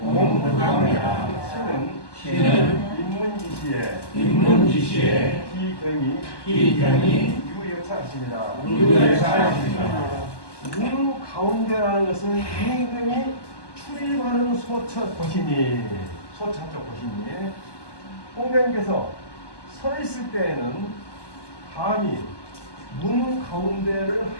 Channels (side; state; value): right; late; 1.2 ms